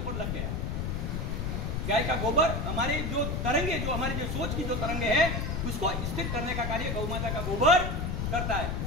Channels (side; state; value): left; noise; rumble, 1 dB below the sound